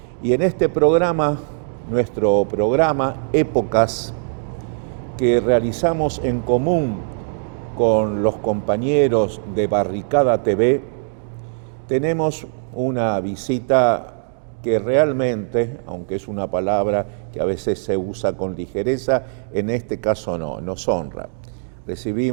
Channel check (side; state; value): left; silent; digital silence